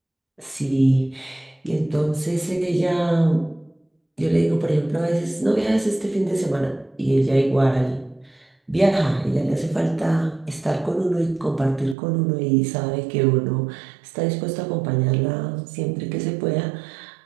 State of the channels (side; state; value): left; drops out; at 12.0 s